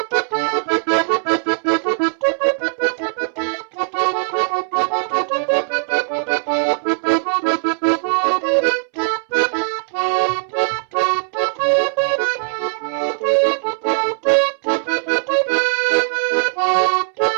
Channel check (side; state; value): left; silent; 66 dB below the other